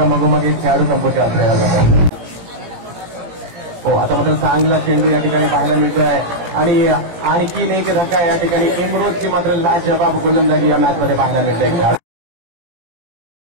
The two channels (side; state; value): left; late; 17 ms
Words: मगोमग एक खेळाडू संपोषित असलेला जातो. हो, आता मात्र चांगला चेंडू या ठिकाणी पाहायला मिळतोय आणि आणखीन एक धक्का या ठिकाणी इमरोजची मात्र लाजवाब गोलंदाजी या मॅचमध्ये पाहायला मिळते.